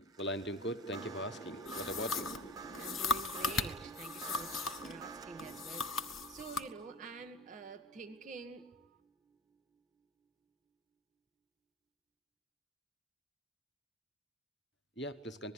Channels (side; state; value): both; normal; correlation 0.35